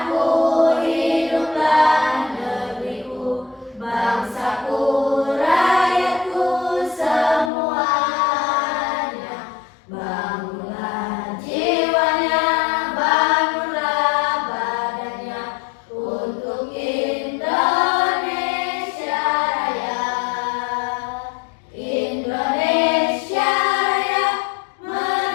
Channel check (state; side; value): drops out; right; at 7.5 s